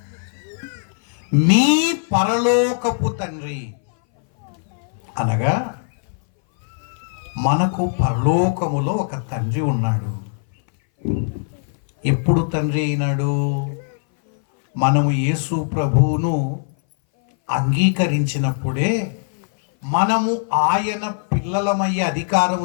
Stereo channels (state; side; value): silent; right; 61 dB below the other